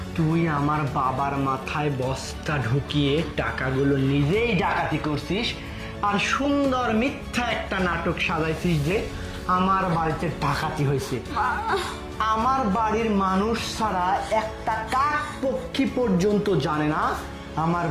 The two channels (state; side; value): identical; both; correlation 1.00